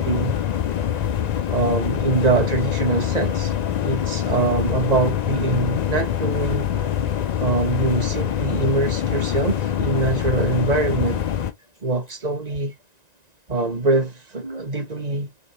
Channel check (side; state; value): left; late; 1.9 ms